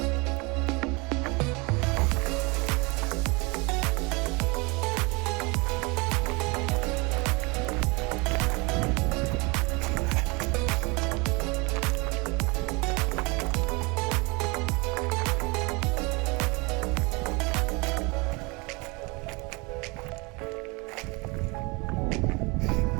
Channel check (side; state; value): left; quieter; 27.6 dB